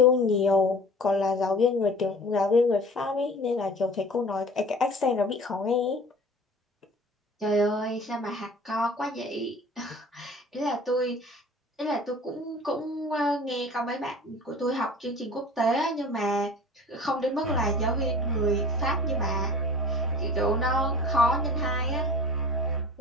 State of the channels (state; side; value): normal; both; correlation 0.42